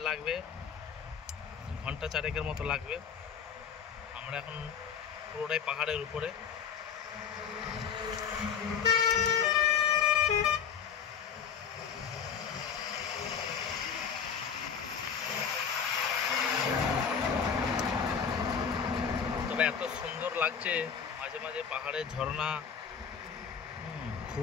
লাগবে ঘন্টা 4 মতো লাগবে। আমরা এখন পুরোটাই পাহাড়ের উপরে। তবে এত সুন্দর লাগছে, মাঝে মাঝে পাহাড়ের ঝর্ণা,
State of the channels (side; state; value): right; quieter; 7.1 dB